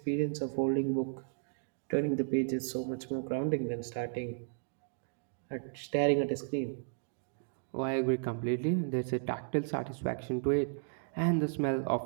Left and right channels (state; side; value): silent; left; digital silence